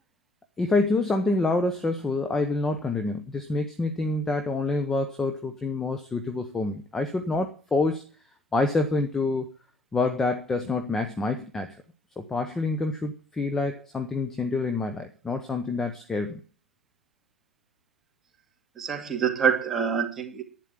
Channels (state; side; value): normal; both; correlation 0.63